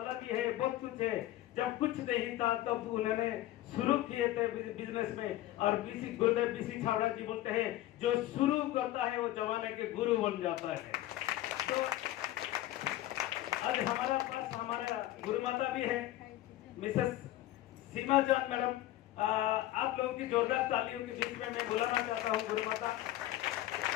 भी है, बहुत कुछ है। जब कुछ नहीं था तब तो उन्होंने शुरू किए थे बिजनेस में। और गुरुदेव बीसी छावड़ा जी बोलते हैं, जो शुरू करता है वो जमाने के गुरु बन जाता है। तो आज हमारा पास हमारा गुरु माता भी है, मिसेस सीमा जान मैडम। आप लोगों की जोरदार तालियों के बीच में मैं बुलाना चाहता हूँ गुरु माता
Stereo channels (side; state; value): right; quieter; 14.9 dB